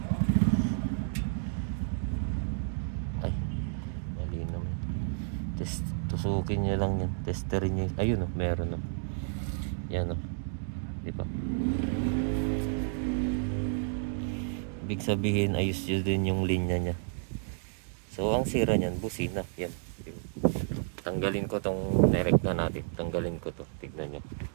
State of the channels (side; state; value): left; silent; digital silence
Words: Ay, mali naman. Tusukin nyo lang yan. Testerin nyo. Ayun o, meron o. Yan o. Diba? Ibig sabihin, ayos nyo din yung linya nya. So, ang sira nyan, busina. Yan. Tanggalin ko tong nerek na natin. Tanggalin ko to. Tignan nyo.